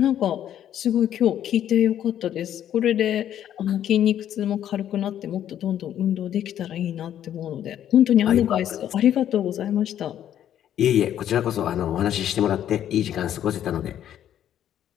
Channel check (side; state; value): right; quieter; 10.7 dB